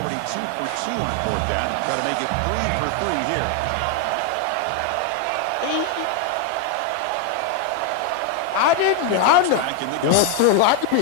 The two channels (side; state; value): both; different; correlation 0.01